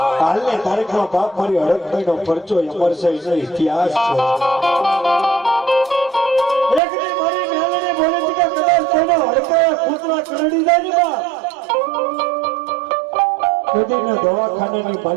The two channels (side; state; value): left; drops out; at 6.8 s